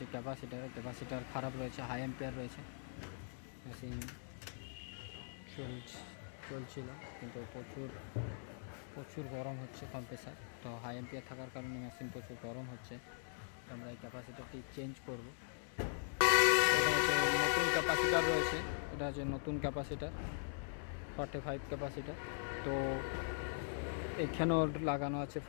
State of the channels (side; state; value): right; silent; digital silence